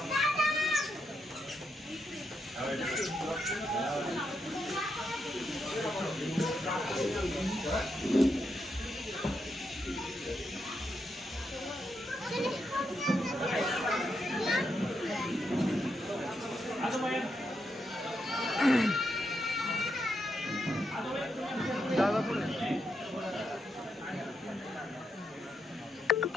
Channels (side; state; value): both; normal; correlation 0.82